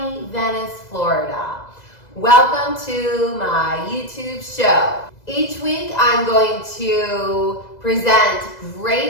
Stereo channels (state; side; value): late; right; 2.0 ms